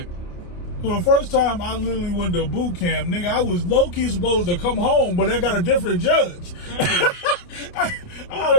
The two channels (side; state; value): right; late; 28 ms